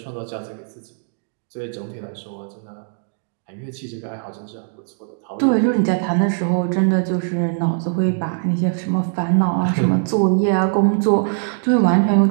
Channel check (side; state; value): left; silent; digital silence